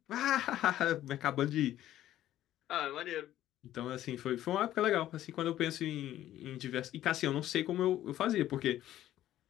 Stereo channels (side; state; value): right; quieter; 13.1 dB